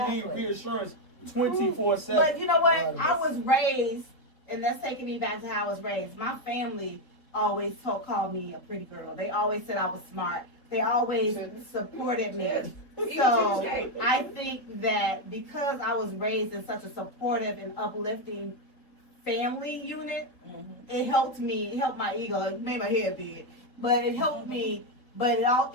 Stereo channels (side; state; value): right; late; 3.7 ms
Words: need Exactly. reassurance 24/7. But you know what? Right. I was raised, and that's taking me back to how I was raised. My family always called me a pretty girl. They always said I was smart. They always supported me. So I think that because I was raised in such a supportive and uplifting family unit, it helped me. It helped my ego. It made my head big, but it helped me. But it